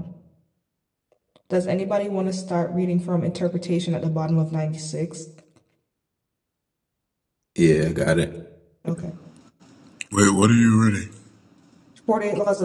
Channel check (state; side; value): identical; both; correlation 1.00